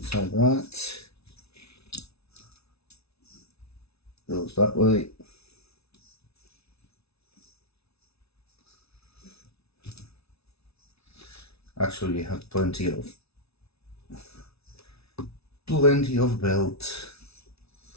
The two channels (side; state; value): right; late; 0.79 ms